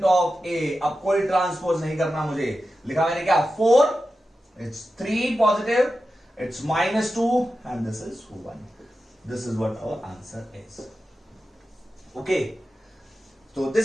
ऑफ ए। अब कोई ट्रांसपोज नहीं करना मुझे, लिखा मैंने क्या 4, it's 3 positive, it's -2 and this is 1। This is what our answer is. Okay, तो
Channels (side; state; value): both; normal; correlation 0.92